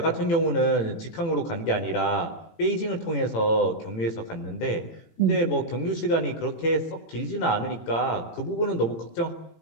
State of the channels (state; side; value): late; right; 18 ms